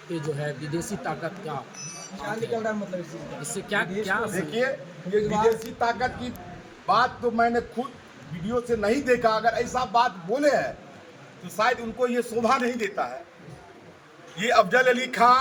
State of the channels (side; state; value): both; identical; correlation 1.00